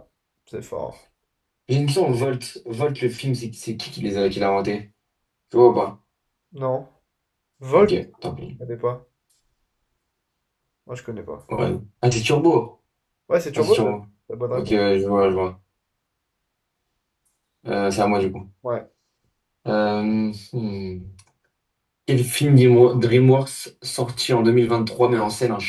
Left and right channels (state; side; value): identical; both; correlation 1.00